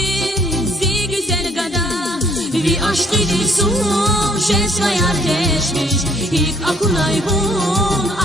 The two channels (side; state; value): both; normal; correlation 0.62